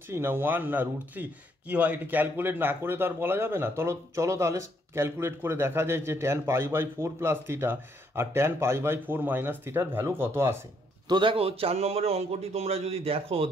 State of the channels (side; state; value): both; normal; correlation 0.71